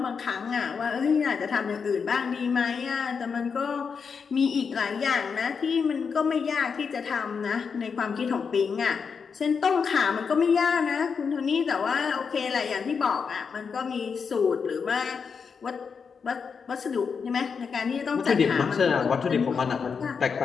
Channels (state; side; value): quieter; right; 5.9 dB